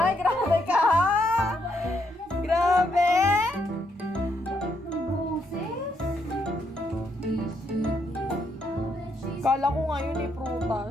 grabe ka ha! Grabe! Kala ko ngayon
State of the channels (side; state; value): both; normal; correlation 0.76